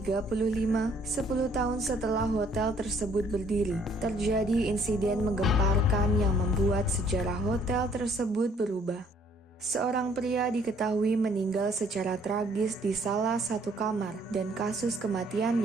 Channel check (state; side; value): normal; both; correlation 0.62